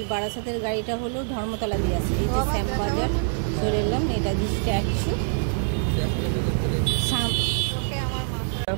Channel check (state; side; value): silent; left; digital silence